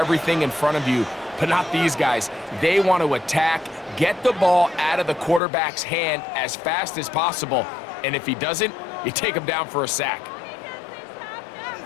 in front of you. But not these guys. They want to attack, get the ball out of the quarterback's hand as fast as possible. And if he doesn't, you take him down for a sack.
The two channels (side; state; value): right; drops out; at 5.4 s